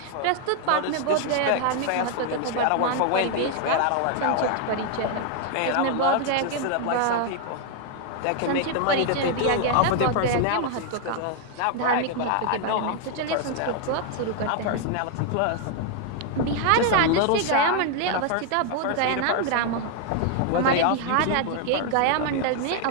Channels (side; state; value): both; different; correlation 0.00